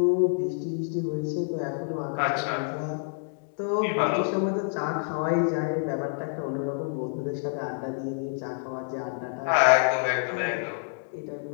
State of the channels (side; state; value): right; silent; digital silence